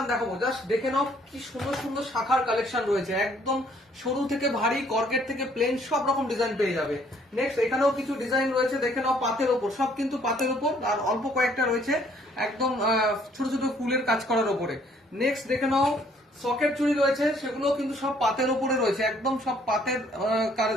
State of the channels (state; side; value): normal; both; correlation 0.63